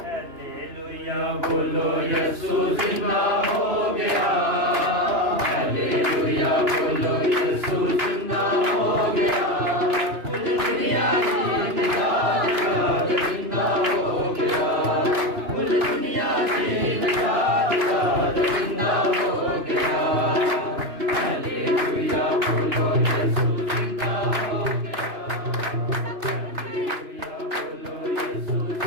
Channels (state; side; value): late; left; 2.9 ms